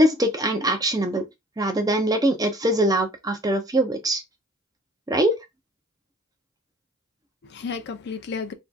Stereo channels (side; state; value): both; normal; correlation 0.53